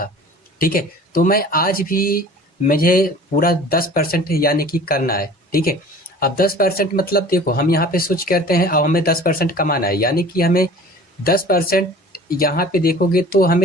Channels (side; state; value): both; normal; correlation 0.45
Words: ठीक है। तो मैं आज भी मुझे पूरा 10% यानी कि करना है, ठीक है। अब 10% मतलब देखो हम यहाँ पे स्विच करते हैं, अब हमें 10% कमाना है, यानी कि हमें 10% यहाँ पे देखोगे तो